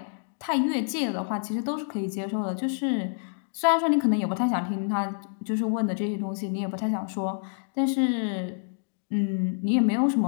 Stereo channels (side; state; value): right; silent; digital silence